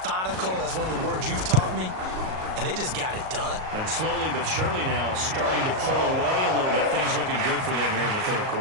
That's one of the words you've taught me. And they just got it done. And slowly but surely now starting to pull away a little bit. Things looking good for them here in the 3rd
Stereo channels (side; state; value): left; late; 38 ms